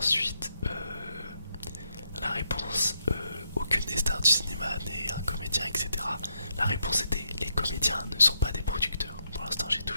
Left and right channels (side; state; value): both; inverted; correlation -0.79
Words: la réponse, aucune des stars du cinéma n'est un comédien, etc. La réponse était, les comédiens ne sont pas des producteurs. Pour l'instant, j'ai